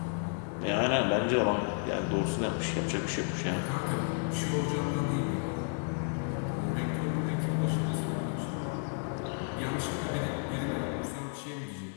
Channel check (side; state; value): right; silent; 55 dB below the other